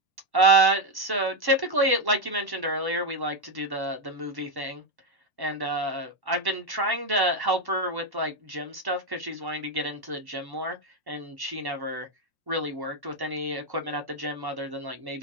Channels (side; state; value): left; late; 1.1 ms